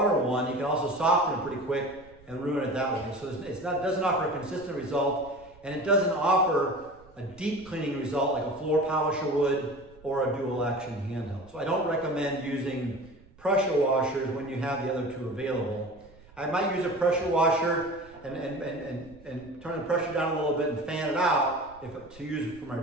one, you can also soften it pretty quick and ruin it that way. So it doesn't offer a consistent result, and it doesn't offer a deep cleaning result like a floor polisher would or a dual action handheld. So I don't recommend using pressure washers when you have the other two available. I might use a pressure washer and turn the pressure down a little bit and fan it out to use it for my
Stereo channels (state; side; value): noise; right; rumble, 25 dB below the sound